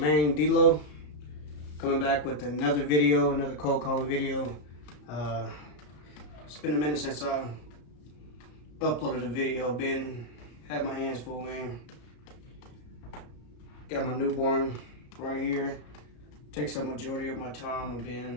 man D-Lo, coming back with another video, another cold calling video. It's been a minute since I uploaded a video. Had my hands full, man. Got my newborn right here. Takes up majority of my time. I've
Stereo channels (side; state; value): right; late; 34 ms